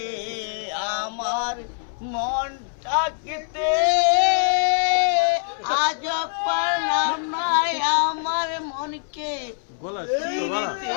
আমার মনটাকে আজ পারলাম না আমার মনকে গলা শুনতো গলা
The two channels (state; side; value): silent; right; 62 dB below the other